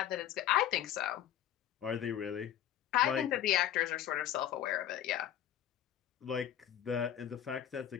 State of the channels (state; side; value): quieter; right; 10.8 dB